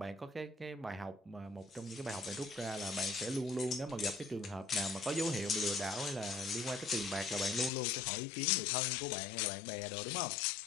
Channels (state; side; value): drops out; right; at 7.7 s